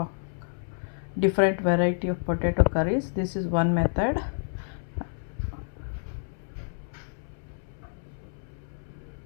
different variety of potato curries. This is one method.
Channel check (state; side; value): silent; right; 58 dB below the other